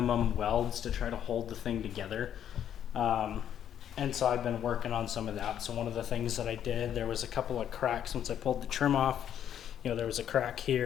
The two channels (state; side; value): quieter; right; 9.8 dB